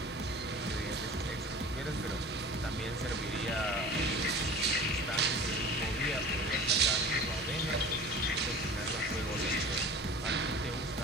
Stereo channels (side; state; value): both; normal; correlation 0.39